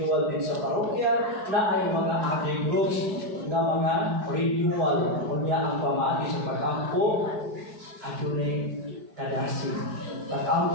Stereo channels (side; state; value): left; late; 4.5 ms